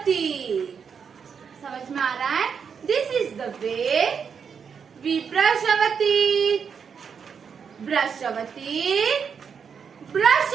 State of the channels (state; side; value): quieter; left; 6.6 dB